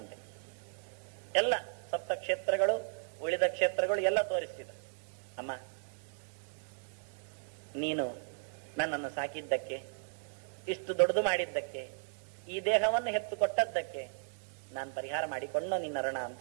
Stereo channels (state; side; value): silent; left; digital silence